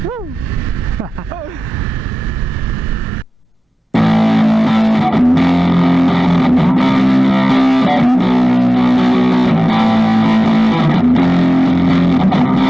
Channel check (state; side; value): normal; both; correlation 0.97